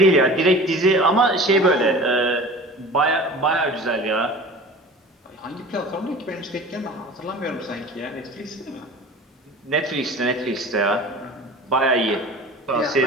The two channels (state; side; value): normal; both; correlation 0.39